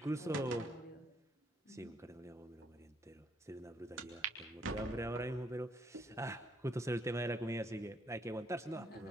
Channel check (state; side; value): normal; both; correlation 0.71